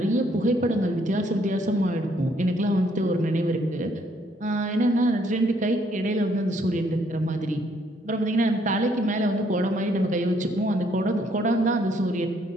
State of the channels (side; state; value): both; normal; correlation 0.68